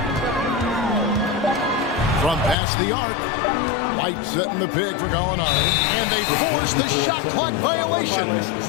From past the arc. White setting the pick for Gallinari. And they force the shot clock violation.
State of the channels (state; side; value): drops out; right; at 2.6 s